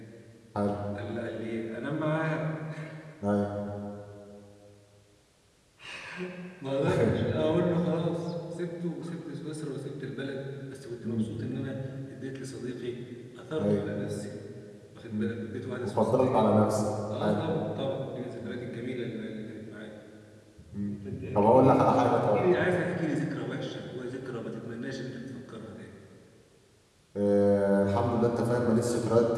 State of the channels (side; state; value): both; identical; correlation 1.00